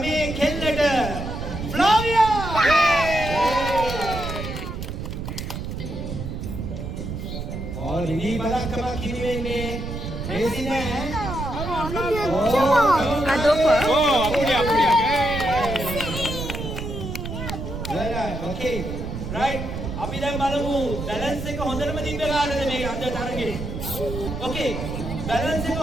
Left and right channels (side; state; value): right; noise; rumble, 6 dB below the sound